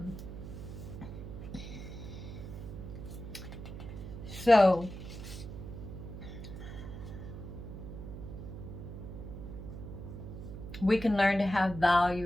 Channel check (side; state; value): right; noise; hum, 9 dB below the sound